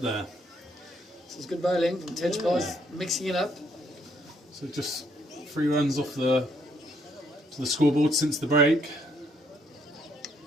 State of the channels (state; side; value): normal; both; correlation 0.70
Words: there. This is good bowling from Tejbal, mixing it up. So just 3 runs off to the scoreboard since the break.